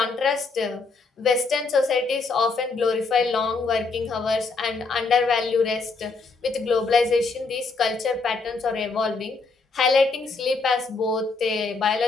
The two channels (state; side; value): quieter; right; 4.1 dB